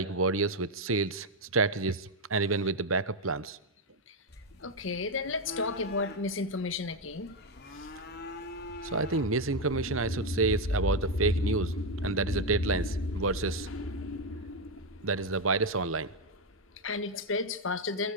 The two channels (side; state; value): both; normal; correlation 0.04